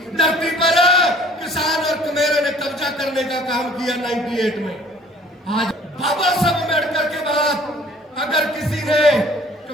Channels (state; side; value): normal; both; correlation 0.53